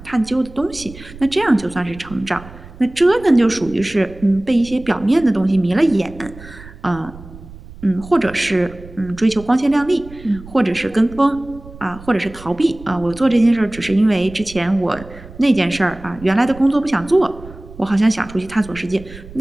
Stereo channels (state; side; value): noise; right; rumble, 18 dB below the sound